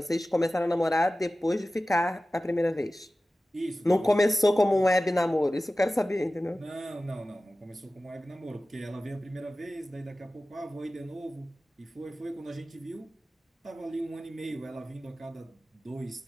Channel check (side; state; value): both; normal; correlation 0.96